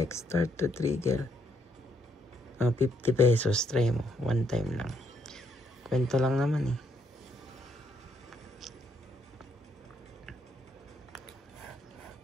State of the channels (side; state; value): both; normal; correlation 0.73